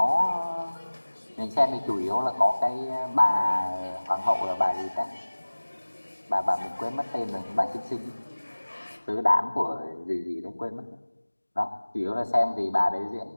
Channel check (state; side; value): inverted; both; correlation -1.00